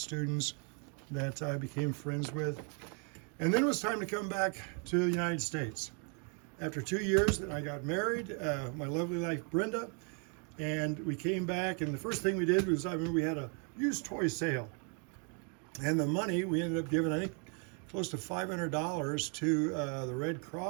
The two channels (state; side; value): quieter; left; 39.4 dB